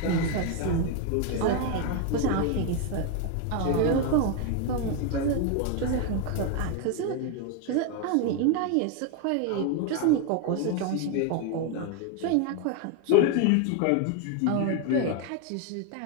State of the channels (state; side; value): different; both; correlation 0.01